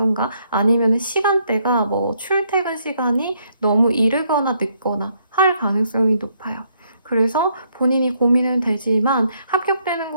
아니면 시간대가 뭐 출퇴근 시간이 너무 이르거나 늦거나 할 가능성이 높아요. 그래서 본인이 고민은 되지만 합격되는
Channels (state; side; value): inverted; both; correlation -0.72